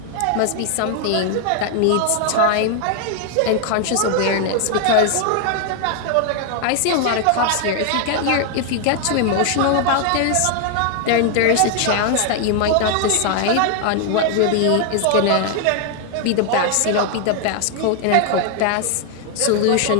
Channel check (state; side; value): different; both; correlation 0.00